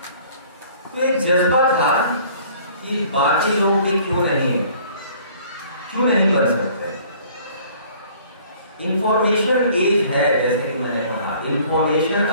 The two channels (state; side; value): inverted; both; correlation -0.54